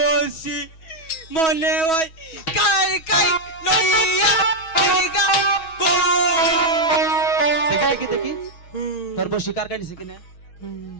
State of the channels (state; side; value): late; right; 6.2 ms